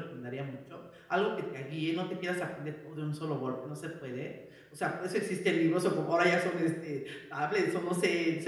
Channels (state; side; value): identical; both; correlation 1.00